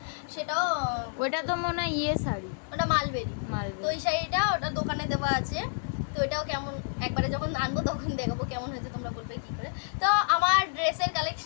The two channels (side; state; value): right; silent; digital silence